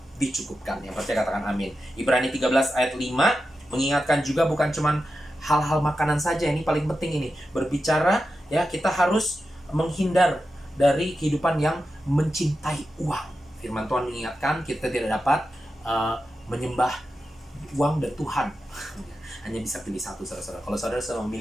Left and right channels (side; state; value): both; normal; correlation 0.90